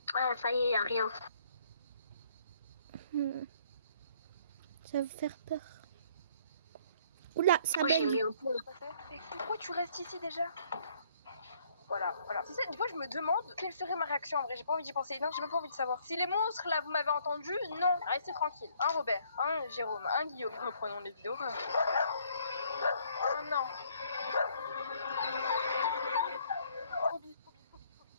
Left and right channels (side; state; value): both; inverted; correlation -0.63